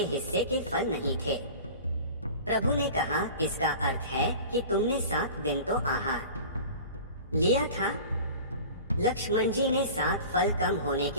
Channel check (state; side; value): inverted; both; correlation -0.39